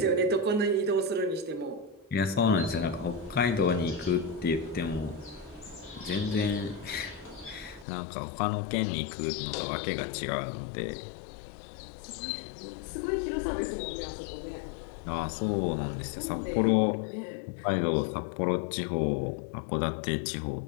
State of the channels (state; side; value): drops out; right; at 7.9 s